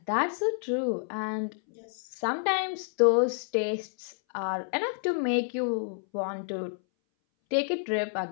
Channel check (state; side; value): silent; right; 58 dB below the other